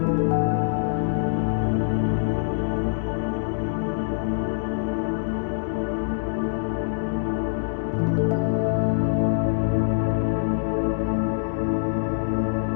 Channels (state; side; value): silent; right; 62 dB below the other